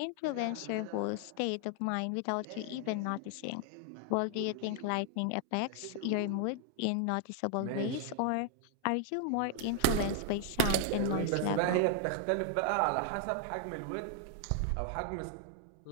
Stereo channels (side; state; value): both; different; correlation 0.00